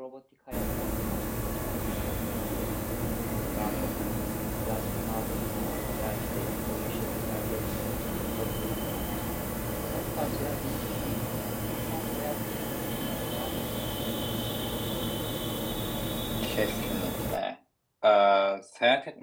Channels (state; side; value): identical; both; correlation 1.00